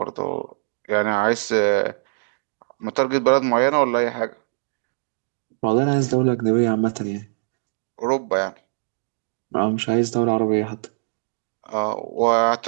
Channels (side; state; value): left; silent; digital silence